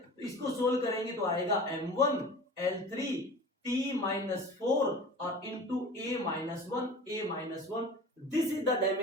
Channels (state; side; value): normal; both; correlation 0.38